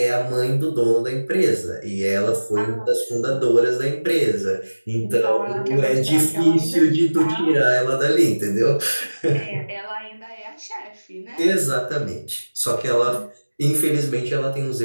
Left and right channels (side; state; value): both; inverted; correlation -1.00